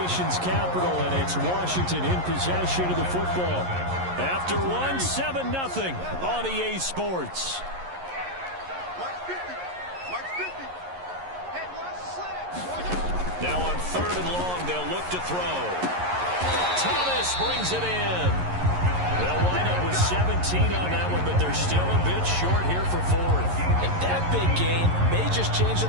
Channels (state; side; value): late; left; 11 ms